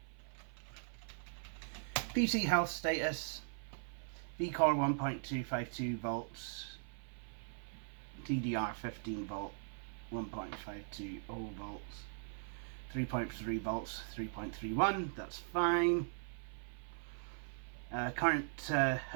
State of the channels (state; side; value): silent; left; 51 dB below the other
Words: PC health status. V-Core 1.252 volts. DDR 15 volt. 1.520 volts. 3.3 volts, 3.31, that's fine. Current